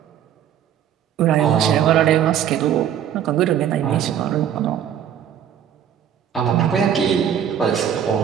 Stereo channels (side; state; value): left; quieter; 9.4 dB